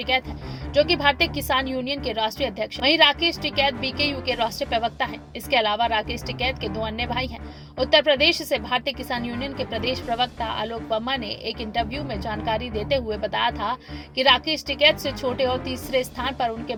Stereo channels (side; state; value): both; identical; correlation 1.00